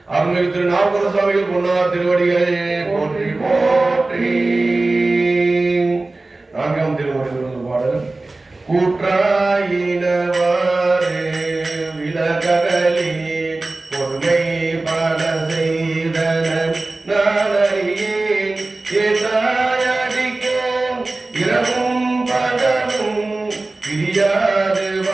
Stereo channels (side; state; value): left; quieter; 3.2 dB